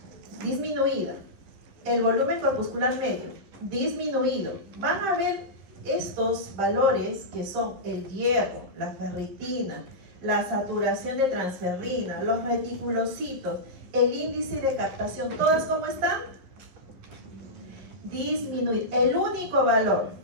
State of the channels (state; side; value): late; left; 11 ms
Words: disminuida, el volumen corpuscular medio disminuido, van a ver estos valores que son el hierro, la ferritina, la saturación de transferrina, los reticulocitos, el índice de captación, ¿todas cómo están? Disminuido. El único valor